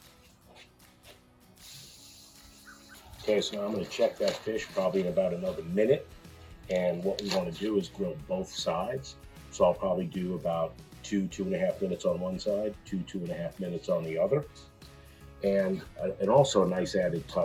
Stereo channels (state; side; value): identical; both; correlation 1.00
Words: Okay, so now I'm going to check that fish probably in about another minute. And what we want to do is grill both sides. So I'll probably do about 2.5 minutes on one side, 2.5 minutes on the other. And also a nice added